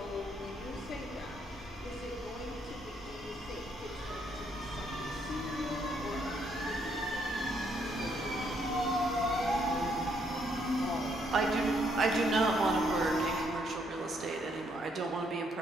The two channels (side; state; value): both; normal; correlation 0.72